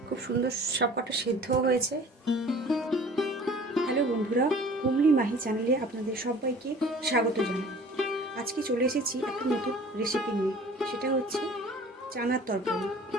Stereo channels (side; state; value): both; normal; correlation 0.47